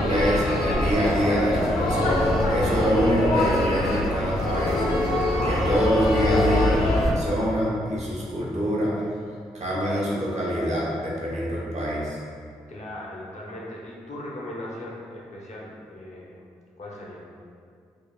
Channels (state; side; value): normal; both; correlation 0.74